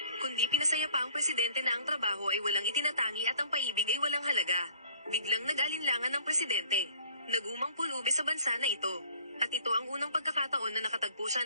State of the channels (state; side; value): inverted; both; correlation -0.55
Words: kundi pinasaya pa ang presidente na ang trabaho ay walang itinatangi at ang paibig ay walang halaga. Biglang nag-alinlangan ng presidente. Nagumang pulubi sa bansa na ito. At ito ang unang pagkakataon na nakatagpo siya